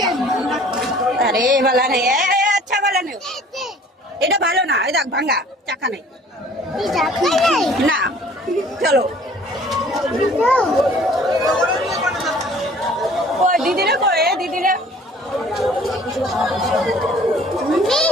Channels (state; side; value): normal; both; correlation 0.52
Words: अरे वाला नहीं है अच्छा वाला नहीं এটা ভালো না এই দেখ ভাঙা চাকা নাই না চলো কই দিদি রে কই দিদি রে